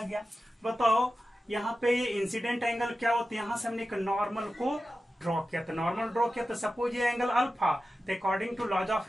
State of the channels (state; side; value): normal; both; correlation 0.93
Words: गया। बताओ यहाँ पे ये इंसिडेंट एंगल क्या होता है? यहाँ से हमने एक नॉर्मल को ड्रॉ किया, तो नॉर्मल ड्रॉ किया तो सपोज ये एंगल अल्फा, तो according to laws